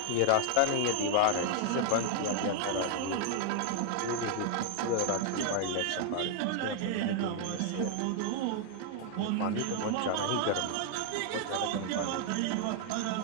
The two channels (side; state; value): both; different; correlation 0.00